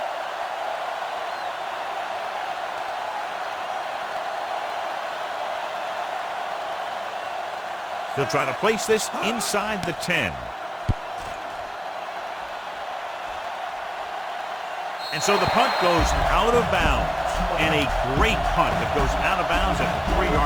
He'll try to place this inside the 10. And so the punt goes out of bounds. And a great punt that goes out of bounds at the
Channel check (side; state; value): both; identical; correlation 1.00